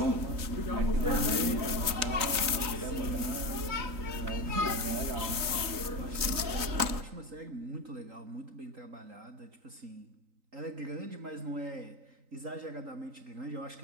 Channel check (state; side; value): late; left; 3.9 ms